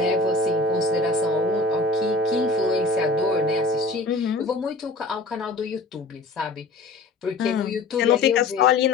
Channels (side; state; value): right; quieter; 3.3 dB